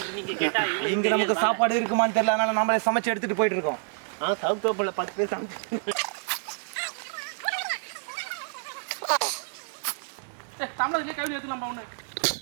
நீங்க கேட்டா இங்க நமக்கு சாப்பாடு இருக்குமான்னு தெரியல. அதனால நாமளே சமைச்சு எடுத்துட்டு போயிட்டு இருக்கோம். சவுத்தோப்புல 10 பேர் சமைச்சு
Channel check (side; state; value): left; silent; digital silence